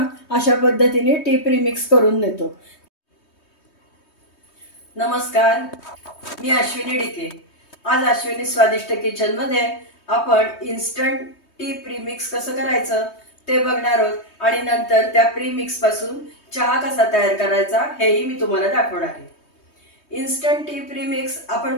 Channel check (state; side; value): late; right; 3.2 ms